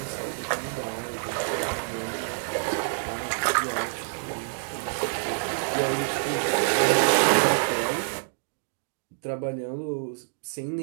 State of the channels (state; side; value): silent; left; digital silence